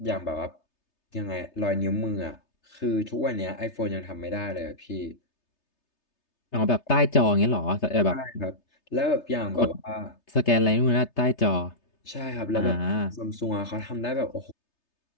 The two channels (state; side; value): late; right; 3.3 ms